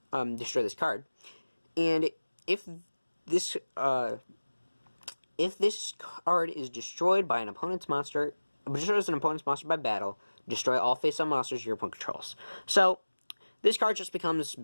destroy this card. And if this card is destroyed by an opponent's monster, destroys an opponent's monster by battle, destroy all face-up monsters your opponent controls. So, this card just becomes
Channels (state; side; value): inverted; both; correlation -1.00